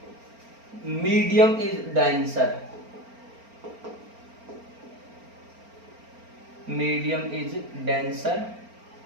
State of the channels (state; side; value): late; left; 4.4 ms